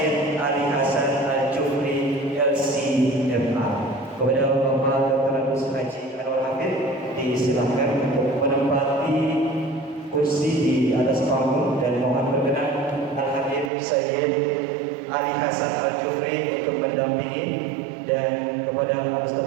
Ali Hasan Al-Jufri LCMA. Kepada Bapak Dr. Adus Haji Anwar Hafid disilahkan untuk menempati kursi di atas panggung dan mohon berkenan Al-Habib Sayyid Ali Hasan Al-Jufri untuk mendampingi, dan kepada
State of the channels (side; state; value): left; drops out; at 13.7 s